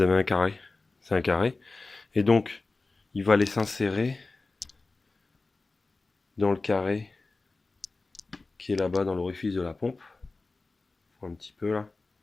avez un carré. C'est un carré. Et donc, il va aller s'insérer dans le carré qui est là-bas dans l'orifice de la pompe. Un petit peu là.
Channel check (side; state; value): right; quieter; 3.6 dB